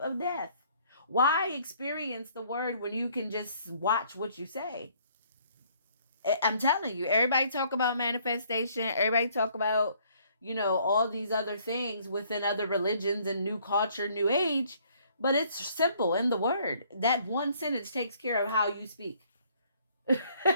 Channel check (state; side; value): inverted; both; correlation -0.63